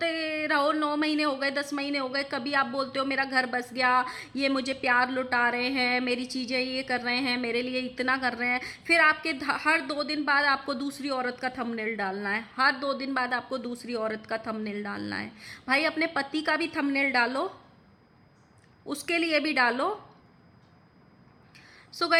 रहो, 9 महीने हो गए, 10 महीने हो गए, कभी आप बोलते हो मेरा घर बस गया, ये मुझे प्यार लुटा रहे हैं, मेरी चीज़ें ये कर रहे हैं, मेरे लिए इतना कर रहे हैं, फिर आपके हर 2 दिन बाद आपको दूसरी औरत का थंबनेल डालना है, हर 2 दिन बाद आपको दूसरी औरत का थंबनेल डालना है। भाई अपने पति का भी थंबनेल डालो, उसके लिए भी डालो। सो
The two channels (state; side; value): identical; both; correlation 1.00